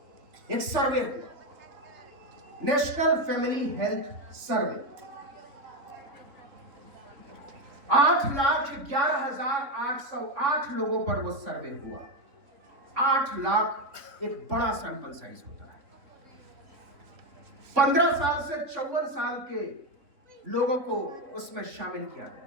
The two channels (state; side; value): late; left; 3.4 ms